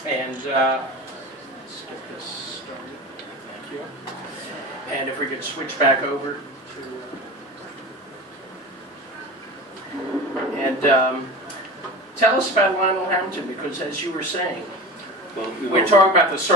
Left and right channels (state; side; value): normal; both; correlation 0.32